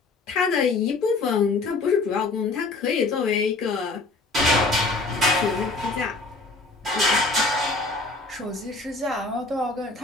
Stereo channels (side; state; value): right; quieter; 3.4 dB